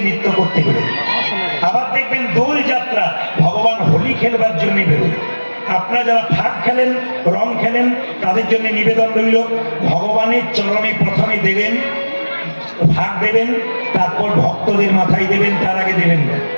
নৃত্য করতে বেরোয়। আবার দেখবেন দোল যাত্রা, ভগবান হোলি খেলবার জন্য বেরোয়। আপনারা যারা ফাঁক খেলেন, রং খেলেন, তাদের জন্য নিবেদন রইল, ভগবানের চরণে প্রথমে দেবেন, ভাগ দেবেন, তারপর ভক্তদের মাথায় দেবেন, তার আগে দেবেন না।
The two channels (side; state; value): both; inverted; correlation -1.00